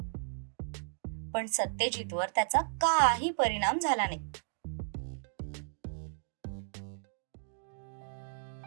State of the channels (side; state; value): left; silent; digital silence